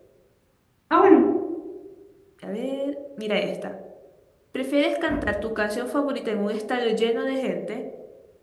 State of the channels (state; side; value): identical; both; correlation 1.00